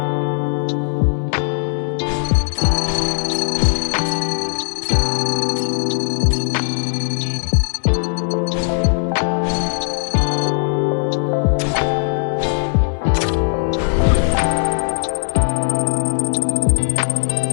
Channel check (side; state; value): right; silent; digital silence